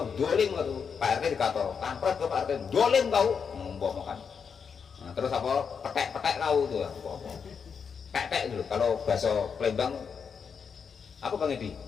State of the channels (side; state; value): right; quieter; 6.3 dB